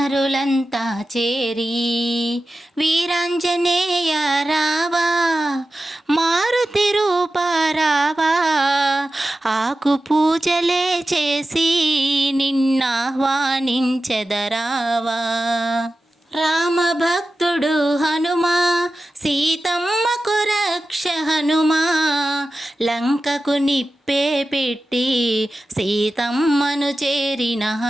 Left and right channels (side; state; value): both; normal; correlation 0.94